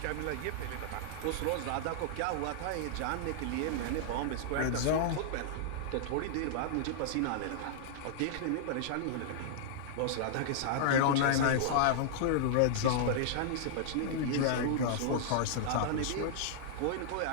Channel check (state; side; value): different; both; correlation -0.01